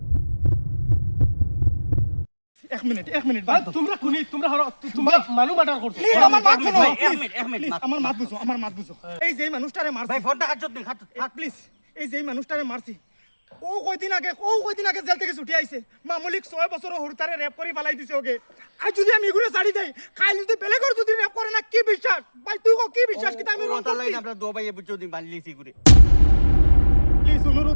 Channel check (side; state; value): both; inverted; correlation -1.00